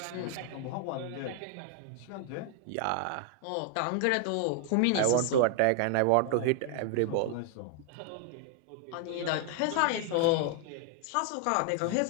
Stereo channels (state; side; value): different; both; correlation 0.00